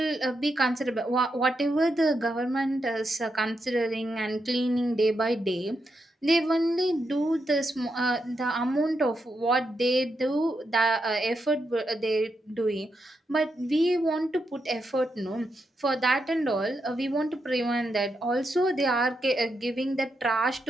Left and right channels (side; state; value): both; normal; correlation 0.83